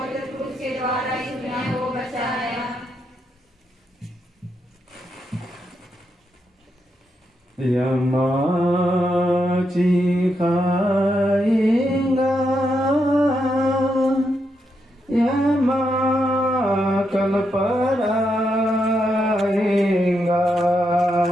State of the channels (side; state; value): both; normal; correlation 0.82